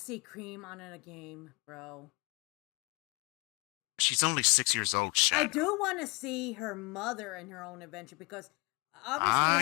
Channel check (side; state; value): right; quieter; 27.7 dB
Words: Cream on a game, bro. She's only 6 years old, I Shadow. do want to see her mother in her own adventure because obviously